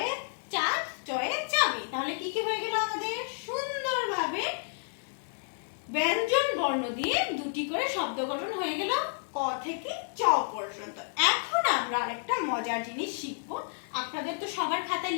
চাঁদ, চয়ে চাবি। তাহলে কি কি হয়ে গেল আমাদের? সুন্দরভাবে ব্যঞ্জন বর্ণ দিয়ে 2টি করে শব্দ গঠন হয়ে গেল ক থেকে চ পর্যন্ত। এখন আমরা আরেকটা মজার জিনিস শিখব। আপনাদের তো সবার খাতায়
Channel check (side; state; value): right; silent; digital silence